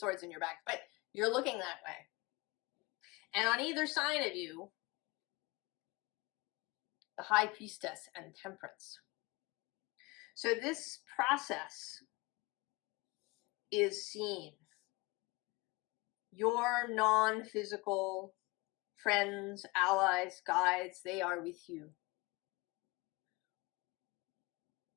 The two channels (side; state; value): right; quieter; 24.5 dB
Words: in your back, but you're looking that way. And on either side of you, the High Priestess and Temperance. So this process is seen. Your non-physical friends, allies, guides, they are with you.